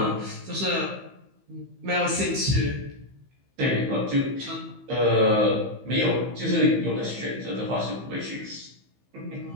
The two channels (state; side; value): late; left; 15 ms